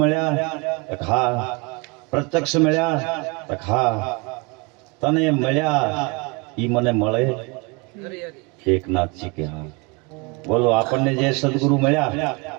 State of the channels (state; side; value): quieter; left; 29.0 dB